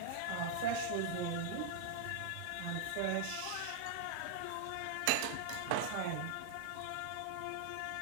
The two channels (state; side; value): different; both; correlation -0.01